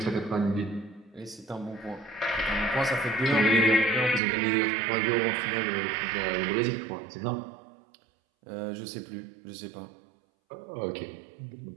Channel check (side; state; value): left; drops out; at 4.2 s